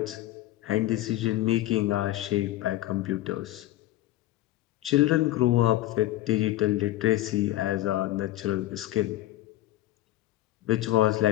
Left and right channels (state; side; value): quieter; right; 15.5 dB